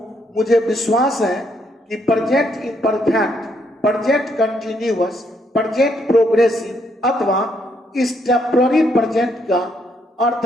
मुझे विश्वास है कि present imperfect, present continuous, present progressive अथवा इस टेम्पररी प्रेजेंट का अर्थ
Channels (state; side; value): normal; both; correlation 0.73